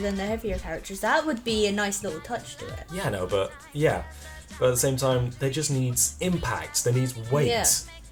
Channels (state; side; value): identical; both; correlation 1.00